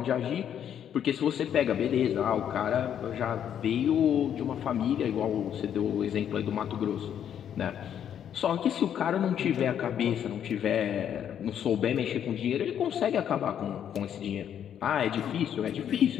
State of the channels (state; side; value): quieter; right; 9.4 dB